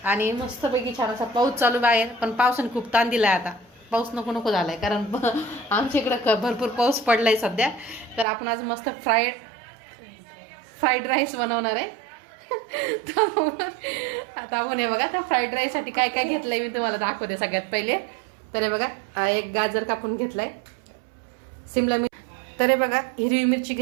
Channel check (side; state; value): left; drops out; at 8.2 s